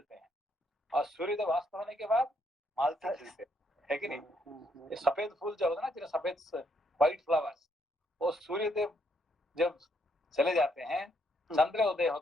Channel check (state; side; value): normal; both; correlation 0.73